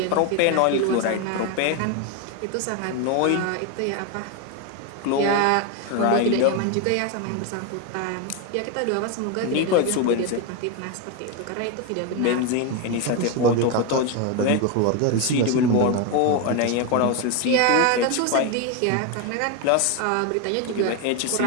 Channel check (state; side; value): different; both; correlation 0.02